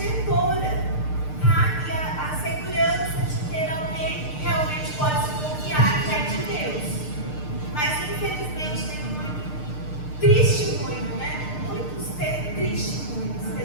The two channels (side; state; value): right; late; 6.6 ms